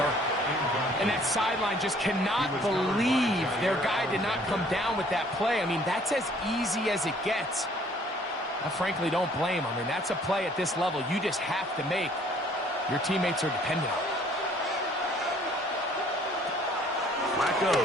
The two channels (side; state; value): both; normal; correlation 0.58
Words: And that sideline just cannot believe their guy did not come down with that play. I mean, that's as easy as it gets. I frankly don't blame him. I mean, that's a play at this level you just have to make. Your teammates are dependent on it. Flacco